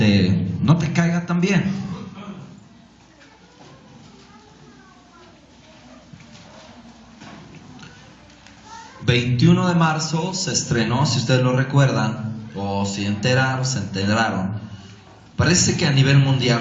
no te caiga tan bien. El 21 de marzo se estrenó, si ustedes lo recuerdan, o si se enteraron, parece que a nivel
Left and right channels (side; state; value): both; identical; correlation 1.00